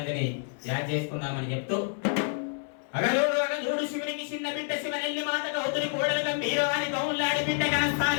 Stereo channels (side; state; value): right; silent; 57 dB below the other